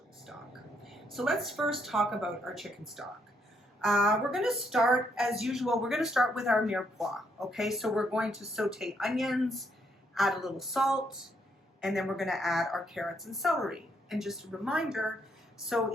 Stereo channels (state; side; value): normal; both; correlation 0.74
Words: stock. So let's first talk about our chicken stock. We're going to start, as usual, we're going to start with our mirepoix. Okay, so we're going to saute onions, add a little salt, and then we're going to add our carrots and celery. And just a reminder, so